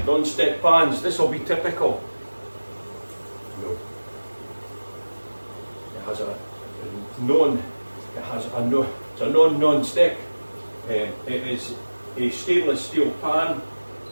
Non-stick pans, this will be typical. No. It has a non-stick. It is a stainless steel pan,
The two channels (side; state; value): both; inverted; correlation -1.00